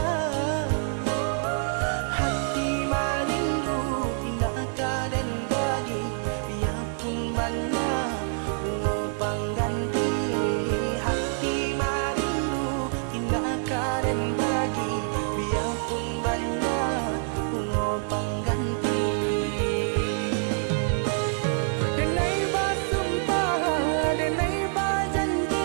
hati marindu indah kaden bagi, biarpun banyak bunga pengganti. Hati marindu indah kaden bagi, biarpun banyak bunga pengganti. Denai basumpah, denai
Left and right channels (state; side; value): silent; left; 61 dB below the other